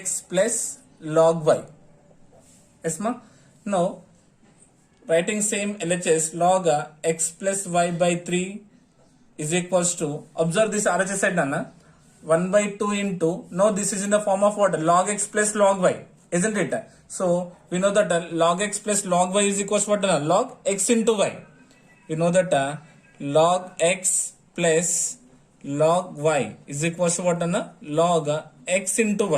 plus log y. Yes, ma? Now writing same LHS, log x plus y by 3 is equals to, observe this RHS side, Nana, 1 by 2 into, now this is in the form of what? Log x plus log y, isn't it? So we know that log x plus log y is equals to what? Log x into y. We know that log x plus log y is equals to what? Log x into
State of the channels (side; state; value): both; identical; correlation 1.00